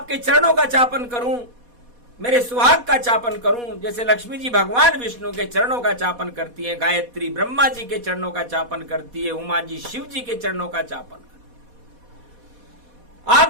चरणों का चापन करूं, मेरे सुहाग का चापन करूं। जैसे लक्ष्मी जी भगवान विष्णु के चरणों का चापन करती है, गायत्री ब्रह्मा जी के चरणों का चापन करती है, उमा जी शिव जी के चरणों का चापन करती है।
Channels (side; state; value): left; late; 4.1 ms